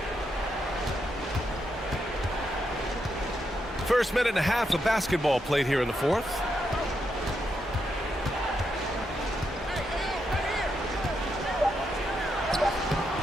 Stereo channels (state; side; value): normal; both; correlation 0.82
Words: First minute and a half of basketball played here in the fourth.